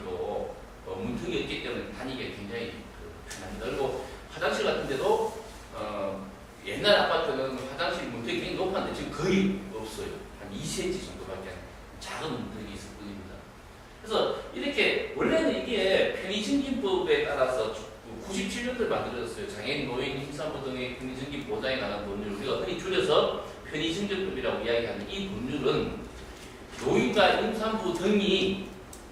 문턱이 없기 때문에 다니기가 굉장히 편합니다. 그리고 화장실 같은 데도 옛날 아파트는 화장실 문턱이 굉장히 높았는데 지금 거의 없어요. 한 2cm 정도밖에 작은 문턱이 있을 뿐입니다. 그래서 이렇게 원래는 이게 편의증진법에 따라서 97년도에 만들어졌어요. 장애인, 노인, 임산부 등의 편의증진 보장에 관한 법률, 우리가 흔히 줄여서 편의증진법이라고 이야기하는 이 법률은 노인과 임산부 등이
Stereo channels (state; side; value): identical; both; correlation 1.00